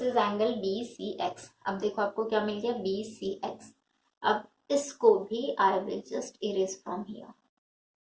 is angle BCX. अब देखो आपको क्या मिल गया? BCX. अब इसको भी I will just erase from here.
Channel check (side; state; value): both; identical; correlation 1.00